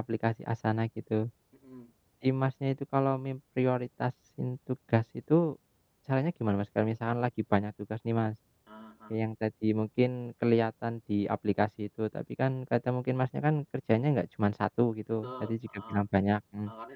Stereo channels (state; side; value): identical; both; correlation 1.00